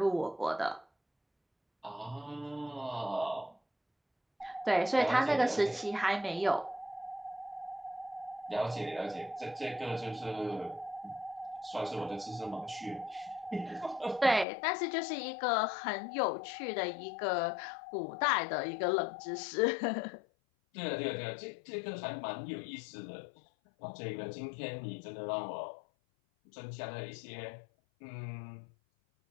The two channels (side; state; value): right; drops out; at 14.5 s